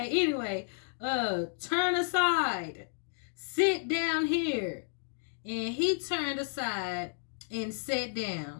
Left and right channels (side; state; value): right; silent; digital silence